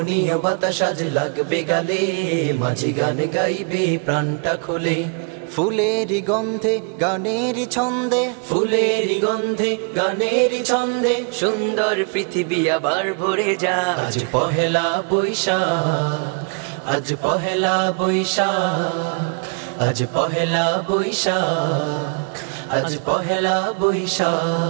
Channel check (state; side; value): quieter; left; 37.9 dB